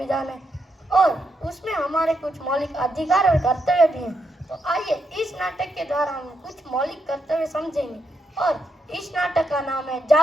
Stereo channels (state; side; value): normal; both; correlation 0.80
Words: है और उसमें हमारे कुछ मौलिक अधिकार और कर्तव्य भी हैं। तो आइए इस नाटक के द्वारा हम कुछ मौलिक कर्तव्य समझेंगे और इस नाटक का नाम है